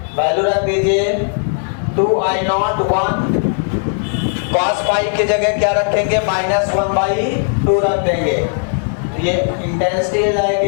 value रख दीजिए 2I0 1, cos phi की जगह क्या रखेंगे? -1/2 रख देंगे। तो ये इंटेंसिटी हो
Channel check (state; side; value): silent; right; digital silence